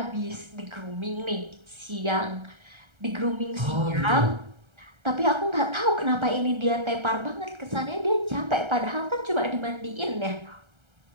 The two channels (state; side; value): late; left; 1.3 ms